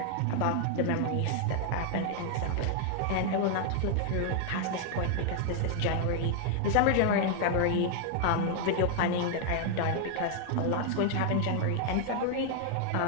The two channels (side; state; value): both; different; correlation 0.00